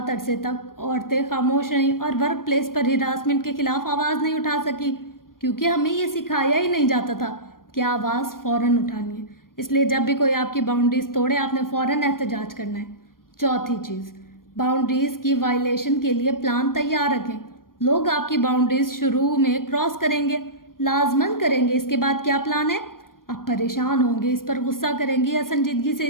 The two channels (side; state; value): right; late; 0.91 ms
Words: عرصے تک عورتیں خاموش رہیں اور ورک پلیس پر ہراسمنٹ کے خلاف آواز نہیں اٹھا سکی، کیونکہ ہمیں یہ سکھایا ہی نہیں جاتا تھا کہ آواز فوراً اٹھانی ہے۔ اس لیے جب بھی کوئی آپ کی باؤنڈریز توڑے آپ نے فوراً احتجاج کرنا ہے۔ چوتھی چیز، باؤنڈریز کی وائلیشن کے لیے پلان تیار رکھیں۔ لوگ آپ کی باؤنڈریز شروع میں کراس کریں گے، لازماً کریں گے، اس کے بعد کیا پلان ہے؟ آپ پریشان ہوں گے، اس پر غصہ کریں گے یا سنجیدگی سے